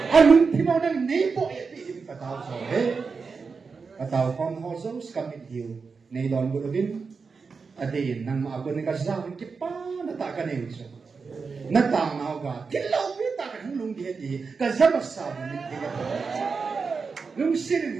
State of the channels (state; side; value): quieter; left; 5.0 dB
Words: alung timaw ng nebo iti kataw so kataw kon hoso skamit hiu nei don gulubin adin nang maago ni kasawin kipa nataka ni so natang na ga kilaw pita kan lung di di kazabasa ni tiga lung sirin